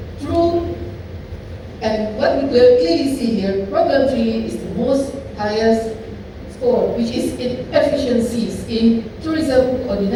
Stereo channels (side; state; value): both; identical; correlation 1.00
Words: And what we clearly see here, problem 3 is the most highest score, which is inefficiencies in tourism